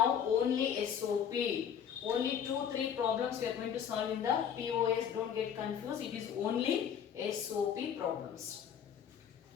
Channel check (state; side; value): quieter; right; 8.3 dB